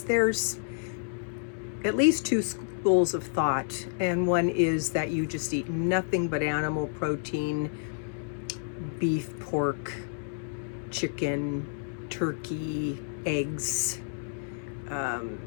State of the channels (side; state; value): right; silent; 58 dB below the other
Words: there's at least two schools of thought, and one is that you just eat nothing but animal protein, beef, pork, chicken, turkey, eggs,